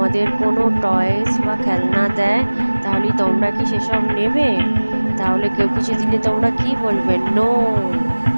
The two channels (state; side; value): inverted; both; correlation -1.00